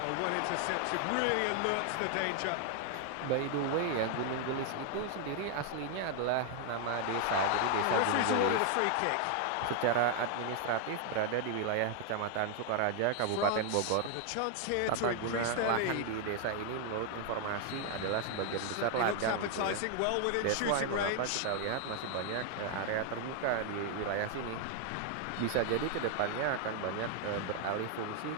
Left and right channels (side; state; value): both; different; correlation 0.00